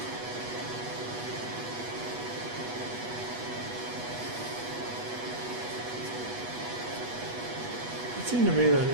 It seemed to me that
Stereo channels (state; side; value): late; left; 8.3 ms